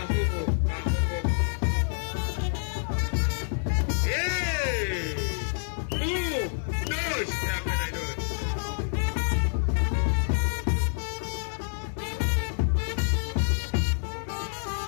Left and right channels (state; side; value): silent; right; 60 dB below the other